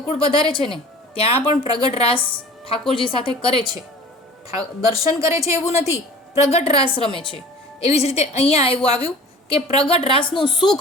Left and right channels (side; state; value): both; normal; correlation 0.43